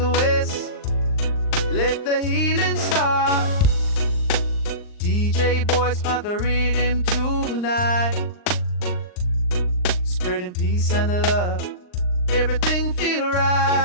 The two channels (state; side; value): late; right; 39 ms